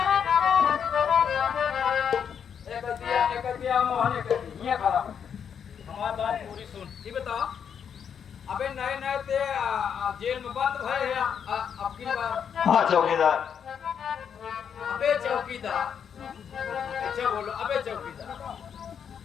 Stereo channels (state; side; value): quieter; right; 7.7 dB